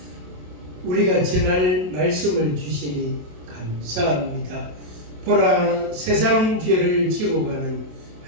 우리가 전할 말씀을 주시니 감사합니다. 보라, 세상 죄를 지고 가는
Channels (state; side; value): late; left; 27 ms